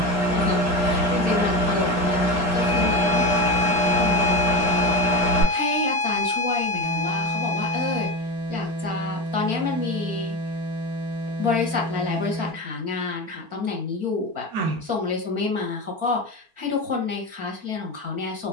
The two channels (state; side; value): late; left; 4.4 ms